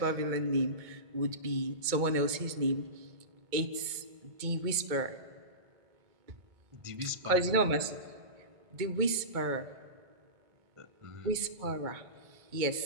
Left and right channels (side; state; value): left; late; 2.2 ms